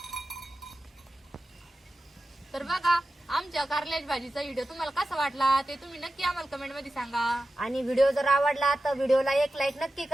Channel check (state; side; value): normal; both; correlation 0.93